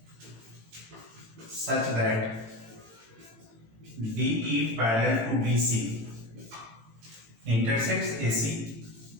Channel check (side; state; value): left; late; 18 ms